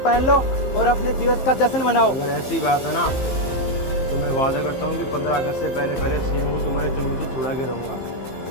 लो और अपने दिवस का जश्न मनाओ। अगर ऐसी बात है ना तो मैं वादा करता हूँ कि 15 अगस्त से पहले सीएम को तुम्हारे चंगुल से छुड़ा के रहूँगा,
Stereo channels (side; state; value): right; late; 15 ms